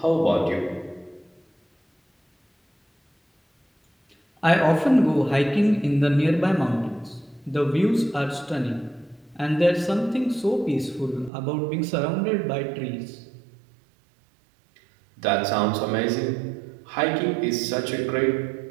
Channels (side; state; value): left; drops out; at 11.3 s